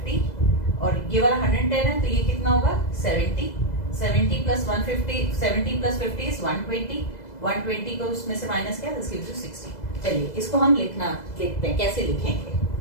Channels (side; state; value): right; late; 2.0 ms